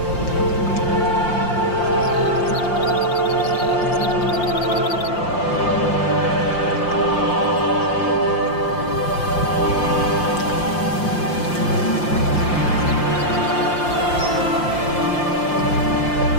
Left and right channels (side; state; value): right; late; 5.7 ms